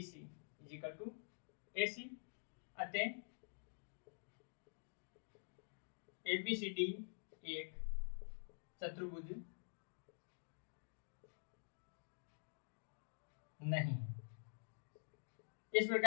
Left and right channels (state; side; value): silent; right; digital silence